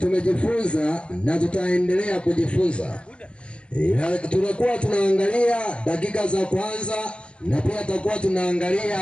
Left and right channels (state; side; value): late; right; 0.057 ms